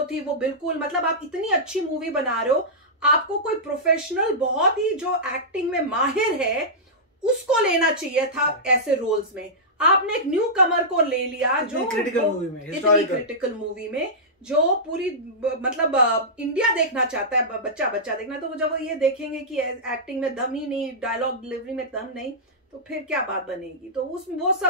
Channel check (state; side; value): normal; both; correlation -0.13